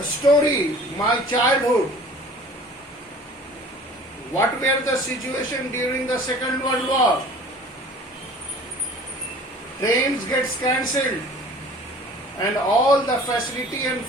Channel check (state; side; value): normal; both; correlation 0.46